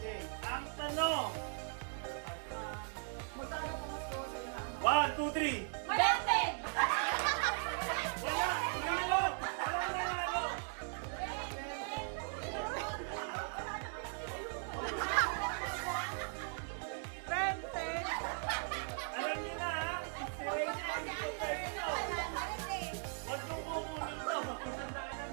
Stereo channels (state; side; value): silent; left; 52 dB below the other